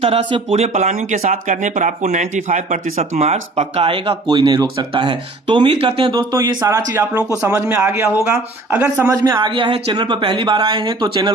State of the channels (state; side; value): quieter; left; 3.0 dB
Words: तरह से पूरे प्लानिंग के साथ करने पर आपको 95% मार्क्स पक्का आएगा, कोई नहीं रोक सकता है। तो उम्मीद करते हैं दोस्तों ये सारा चीज आप लोगों को समझ में आ गया होगा। अगर समझ में आ गया है, चैनल पर पहली बार आए हैं तो चैनल